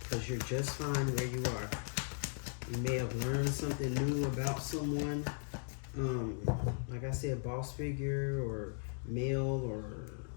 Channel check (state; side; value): silent; right; digital silence